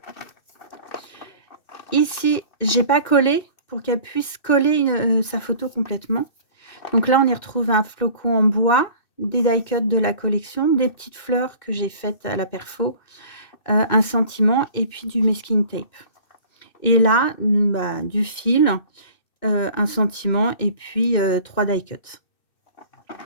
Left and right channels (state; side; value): late; right; 2.6 ms